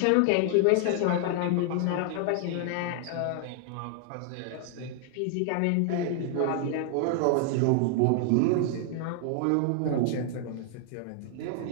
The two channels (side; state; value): both; different; correlation 0.00